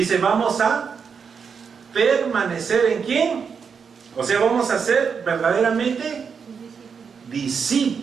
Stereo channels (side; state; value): left; quieter; 6.2 dB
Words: vamos a permanecer ¿en quién? O sea, vamos a ser verdaderamente